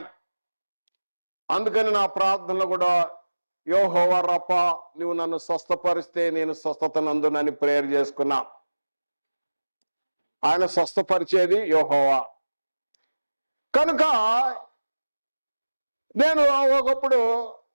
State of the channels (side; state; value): both; inverted; correlation -1.00